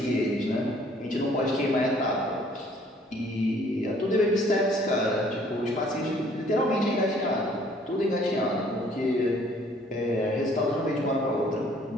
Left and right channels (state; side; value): normal; both; correlation 0.59